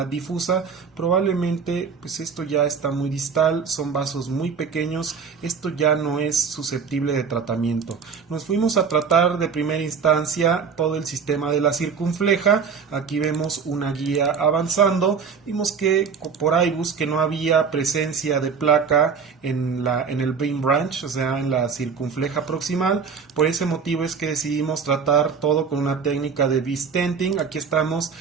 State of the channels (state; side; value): quieter; left; 6.0 dB